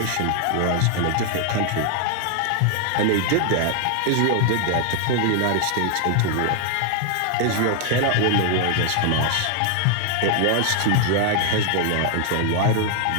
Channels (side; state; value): both; different; correlation 0.00